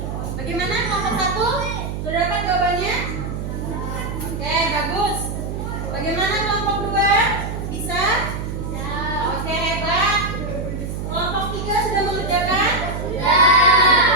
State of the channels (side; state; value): right; noise; hum, 5 dB below the sound